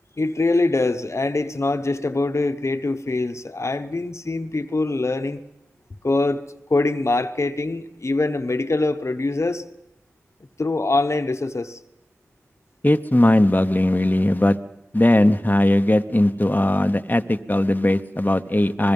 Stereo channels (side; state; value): both; normal; correlation 0.94